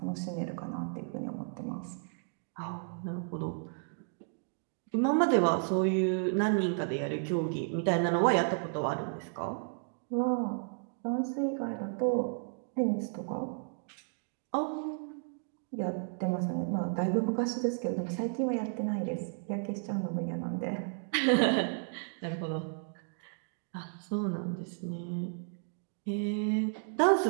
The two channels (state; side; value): silent; left; 56 dB below the other